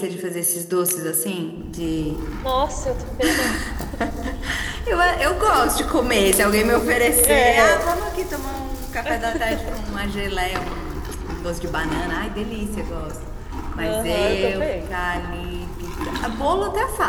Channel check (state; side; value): identical; both; correlation 1.00